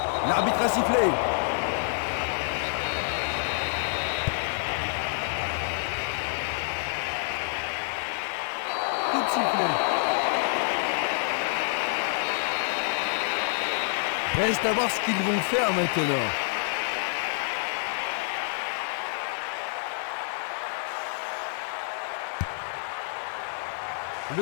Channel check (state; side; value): silent; right; 60 dB below the other